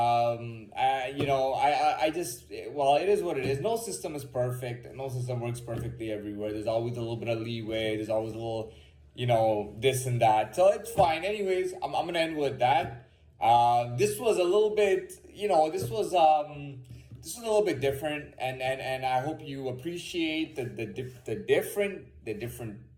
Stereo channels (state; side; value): identical; both; correlation 1.00